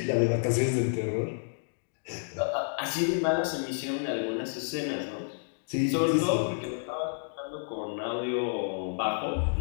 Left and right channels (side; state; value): right; silent; digital silence